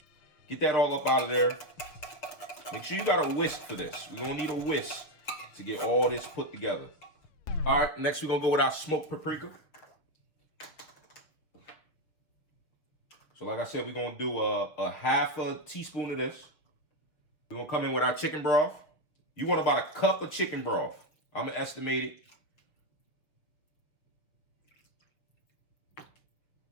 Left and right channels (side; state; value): right; late; 6.8 ms